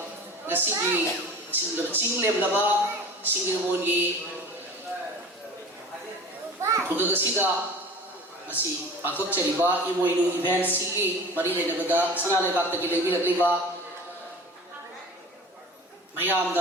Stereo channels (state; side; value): normal; both; correlation 0.39